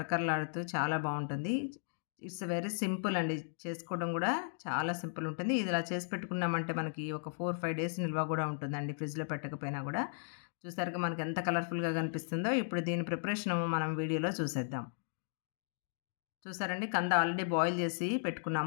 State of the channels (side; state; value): right; silent; digital silence